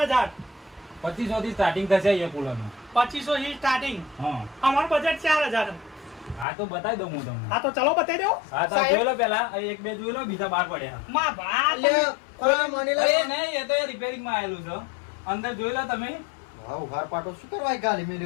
2500 થી સ્ટાર્ટિંગ થશે એ કુલર નું 2500 થી સ્ટાર્ટિંગ હા અમારું બજેટ 4000 હા તો બતાવી દઉં હું તમને હા તો ચલો બતાવી દો હા તો જોઈ લો પેલા એક બે જોઈ લો બીજા બાર પડ્યા માં ભા લે કોઈ મણીલાલ અરે નહીં એ તો રિપેરિંગ માં આવેલું છે અંદર જોઈ લો તમે હા ઉઘાર પાટો શું કરવા ગાલી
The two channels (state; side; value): drops out; right; at 6.5 s